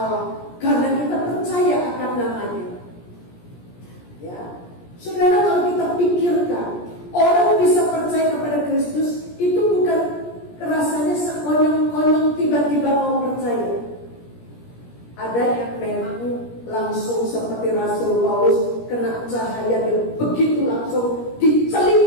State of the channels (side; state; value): right; late; 17 ms